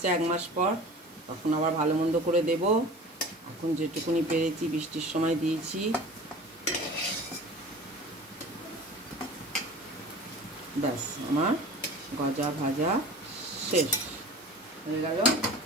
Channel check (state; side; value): normal; both; correlation 0.39